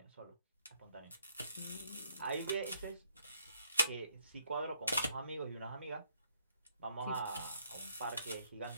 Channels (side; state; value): both; inverted; correlation -0.69